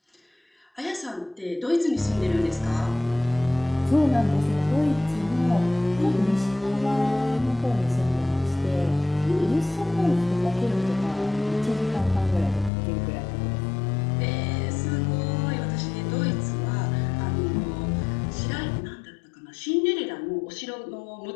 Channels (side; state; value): right; drops out; at 12.7 s